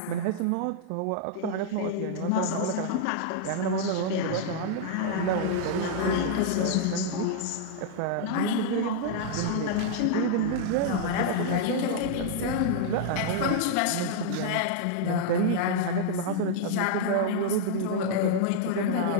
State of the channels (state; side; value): different; both; correlation -0.01